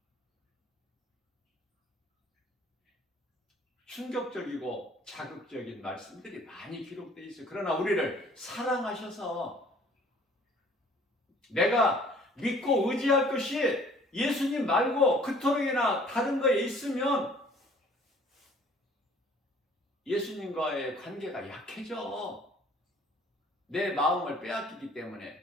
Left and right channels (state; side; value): normal; both; correlation 0.55